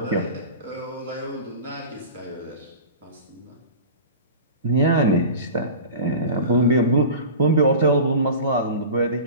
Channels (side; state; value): both; inverted; correlation -0.35